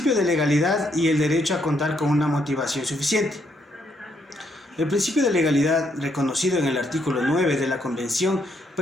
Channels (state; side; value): normal; both; correlation 0.74